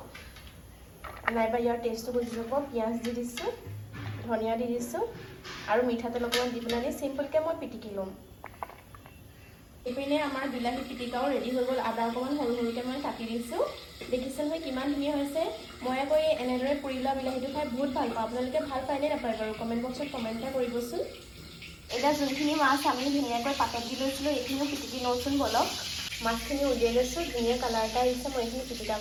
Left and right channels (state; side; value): identical; both; correlation 1.00